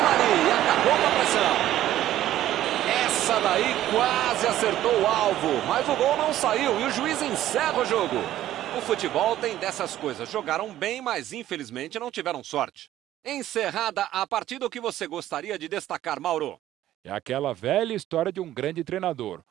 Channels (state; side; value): quieter; left; 13.2 dB